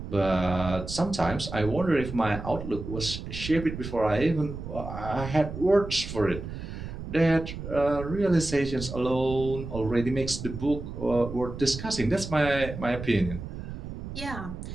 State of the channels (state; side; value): noise; right; rumble, 8 dB below the sound